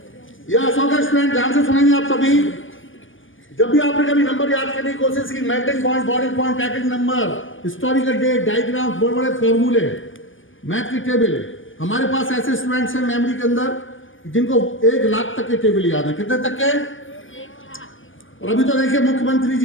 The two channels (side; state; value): right; late; 0.57 ms